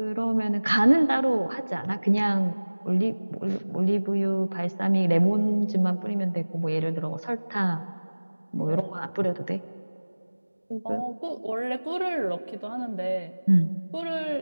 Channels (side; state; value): both; inverted; correlation -1.00